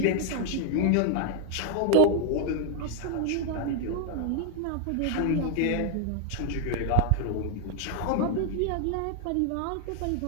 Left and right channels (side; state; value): both; different; correlation 0.00